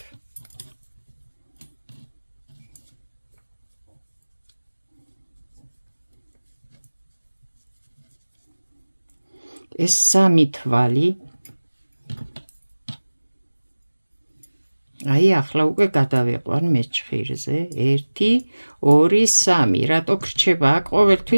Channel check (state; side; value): inverted; both; correlation -1.00